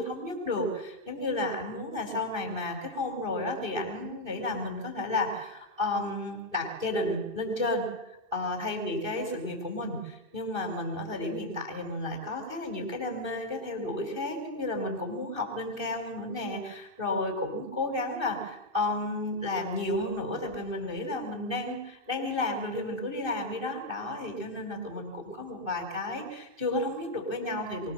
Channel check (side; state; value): left; late; 2.6 ms